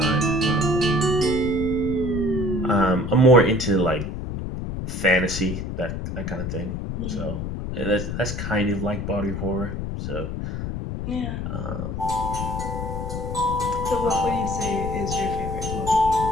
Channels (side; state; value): left; noise; rumble, 4 dB below the sound